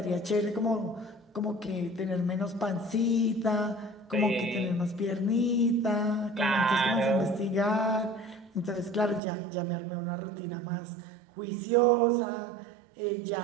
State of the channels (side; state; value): left; drops out; at 9.2 s